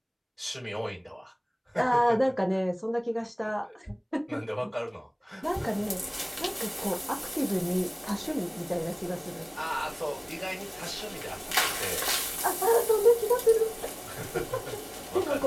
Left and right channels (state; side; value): identical; both; correlation 1.00